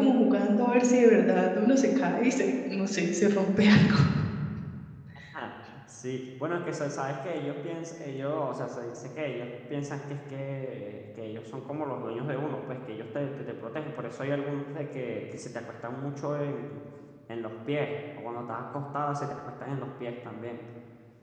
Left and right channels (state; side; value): identical; both; correlation 1.00